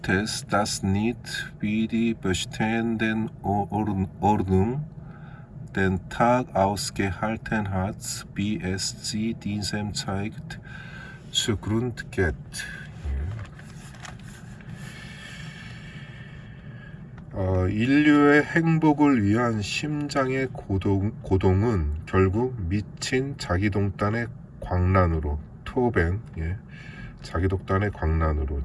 ist, dass nicht wie die bestehenden Ordnung den Tag ausgehalten hat, wie es sie diesem zeigt, zugrund geht. 인류의 행복을 위한 심장의 고동은 결국 미친 자기독단의 광란으로 토벤, 자기독단의 광란으로,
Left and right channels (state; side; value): identical; both; correlation 1.00